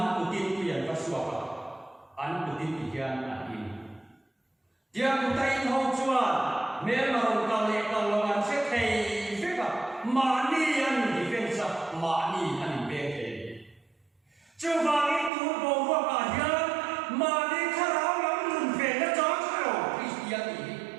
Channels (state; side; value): drops out; left; at 15.3 s